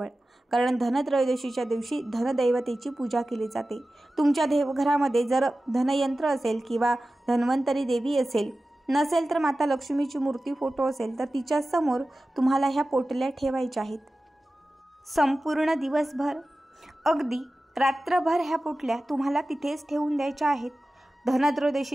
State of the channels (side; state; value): both; normal; correlation 0.95